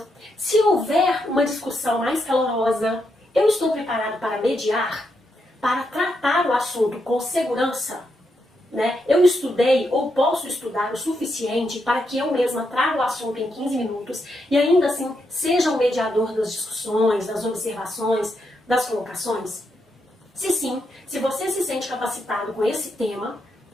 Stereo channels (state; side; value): normal; both; correlation 0.81